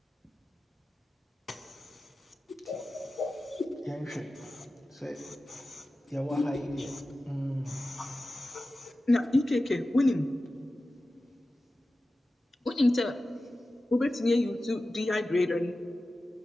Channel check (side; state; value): both; normal; correlation 0.95